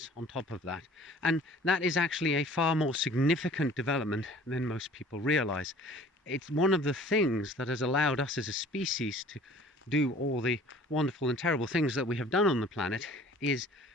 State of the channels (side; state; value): both; normal; correlation 0.50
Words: on top of that. And that is actually a far more significant development than most people realize. It's one of the things that has allowed us as a species to do all the wonderful and terrible things that we have done on the planet, is